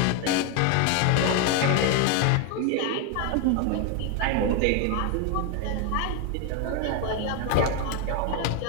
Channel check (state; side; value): different; both; correlation 0.01